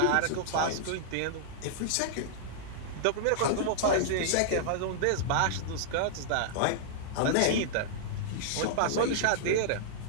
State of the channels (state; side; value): different; both; correlation -0.01